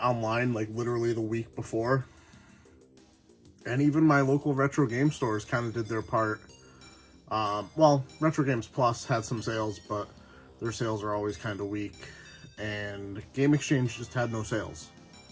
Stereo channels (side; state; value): both; identical; correlation 1.00